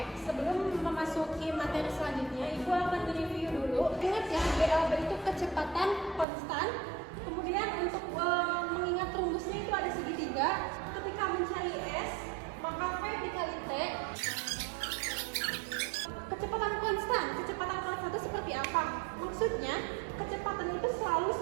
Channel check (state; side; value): drops out; left; at 6.2 s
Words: sebelum memasuki materi selanjutnya, Ibu akan review dulu. Ingat ya, GLB itu kecepatan konstan. Kemudian untuk mengingat rumusnya itu ada segitiga. Ketika mencari S, maka V dikali T. Kecepatan konstan itu seperti apa? Maksudnya, kecepatan itu selalu